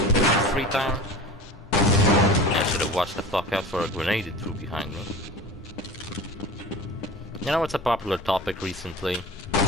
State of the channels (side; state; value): both; normal; correlation 0.36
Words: had free time? I should have watched the fuck out for a grenade it threw behind me. You know what's a popular topic recently?